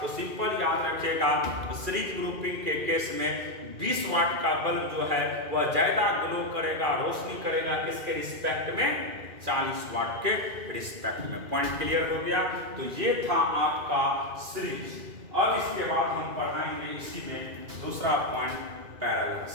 तो सिंपल याद रखिएगा, सीरीज ग्रुपिंग के केस में 20 वाट का बल्ब जो है वह ज्यादा ग्लो करेगा, रोशनी करेगा किसके रिस्पेक्ट में? 40 वाट के रिस्पेक्ट में। पॉइंट क्लियर हो गया? तो ये था आपका सीरीज। अब इसके बाद हम पढ़ाएंगे इसी में दूसरा पॉइंट, पैरेलल।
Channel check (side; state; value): left; late; 2.4 ms